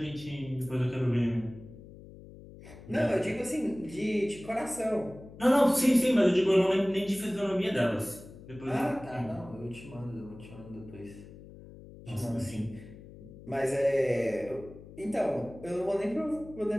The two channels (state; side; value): noise; left; hum, 17 dB below the sound